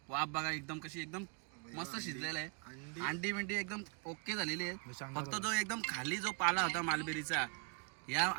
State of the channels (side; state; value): left; quieter; 35.3 dB